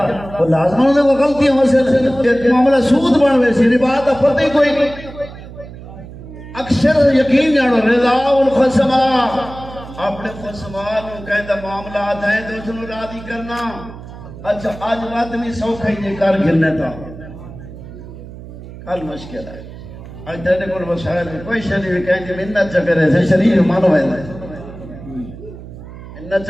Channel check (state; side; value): noise; right; hum, 14 dB below the sound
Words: وہ لازم ہوندے وہ غلطیاں واسطے معاملہ سود بن وے سی ربا دا پتہ ہی کوئی نہیں اکثر یقین جانو رضا الخصما اپنے خصما نو کہندا معاملات ہیں تو اس نو راضی کرنا اچھا آج بات نہیں سوکھا ہی یہ کار گرنے تھا کل مشکل ہے آج تیرے کول وسائل میں کوئی شریف بھی کہیں کہ منت چکرے سے شریف مانو ہے منت